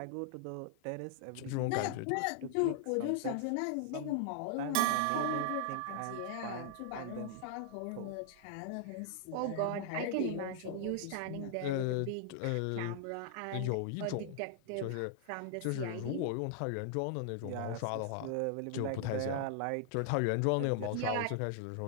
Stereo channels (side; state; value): both; different; correlation -0.01